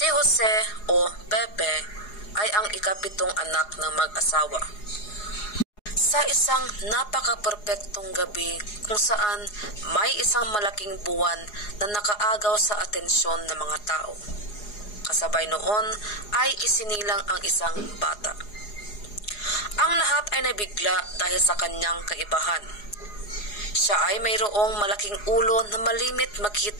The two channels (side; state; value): right; late; 4.8 ms